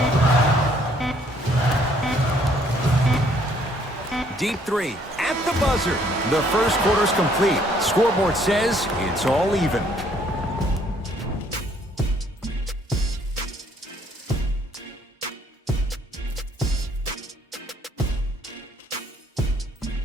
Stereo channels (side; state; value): both; normal; correlation 0.64